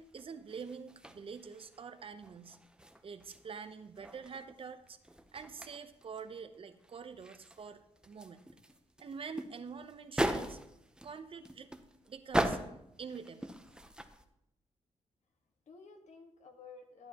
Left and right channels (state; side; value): normal; both; correlation 0.81